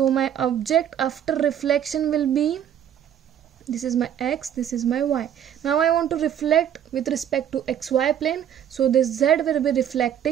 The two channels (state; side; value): quieter; left; 9.7 dB